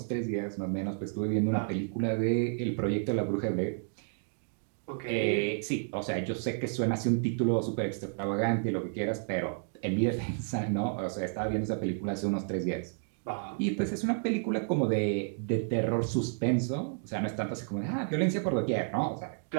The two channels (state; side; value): silent; left; digital silence